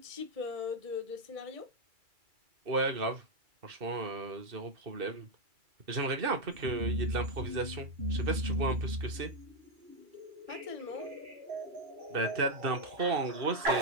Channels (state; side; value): late; left; 2.3 ms